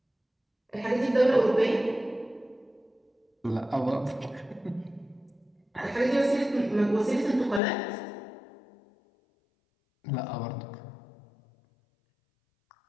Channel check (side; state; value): right; drops out; at 7.6 s